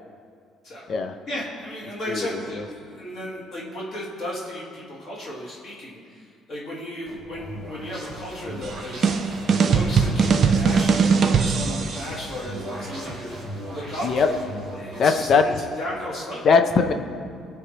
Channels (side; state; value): both; normal; correlation 0.67